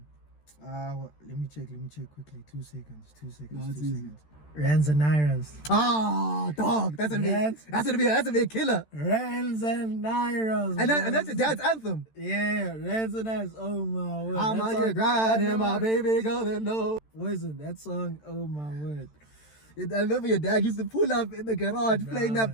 Let me check quickly. 2 seconds. No, it's easy. Rands and Nairas. Ah, dog, that's gonna be a killer. Rands and Nairas. And that's your dad's anthem. Yeah, Rands and Nairas. Oh my word. I'm That out song- here grinding, my baby gonna know. Listen, that song, oh my word. I remember your dad used to pull up in the garage playing that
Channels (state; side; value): late; right; 13 ms